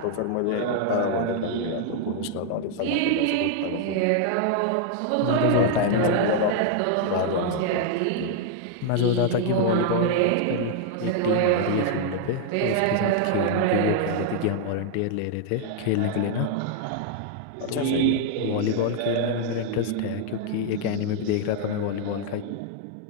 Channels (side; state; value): both; different; correlation 0.00